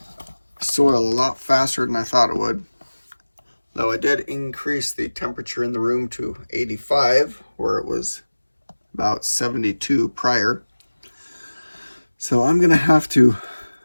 soil a lot faster than I thought it would. Though I did increase the temperature in the room to 85, where it was about 72 prior. So I'm gonna have to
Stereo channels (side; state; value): both; inverted; correlation -1.00